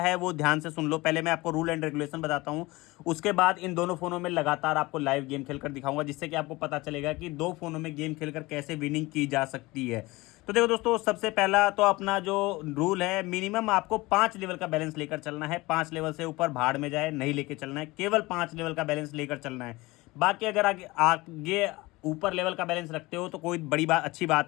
वो ध्यान से सुन लो। पहले मैं आपको रूल एंड रेगुलेशन बताता हूं, उसके बाद इन दोनों फोनों में लगातार आपको लाइव गेम खेलकर दिखाऊंगा, जिससे कि आपको पता चलेगा कि दो फोनों में गेम खेलकर कैसे विनिंग की जा सकती है। तो देखो दोस्तों, सबसे पहला तो अपना जो रूल है, मिनिमम आपको 5 लेवल का बैलेंस लेकर चलना है। 5 लेवल से ऊपर भाड़ में जाए नहीं लेके चलना है, केवल 5 लेवल का बैलेंस लेकर चलना है। बाकी अगर आगे आगे ऊपर लेवल का बैलेंस रखते हो तो कोई बड़ी बात, अच्छी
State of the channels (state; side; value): quieter; right; 21.4 dB